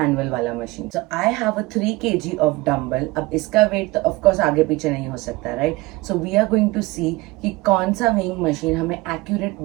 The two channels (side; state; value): left; quieter; 21.5 dB